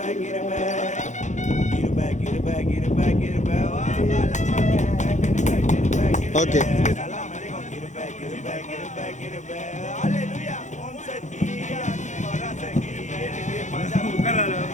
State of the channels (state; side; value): late; right; 0.35 ms